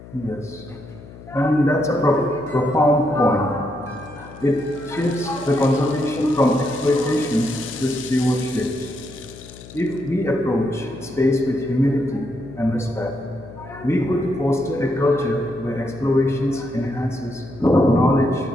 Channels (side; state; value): left; noise; hum, 17 dB below the sound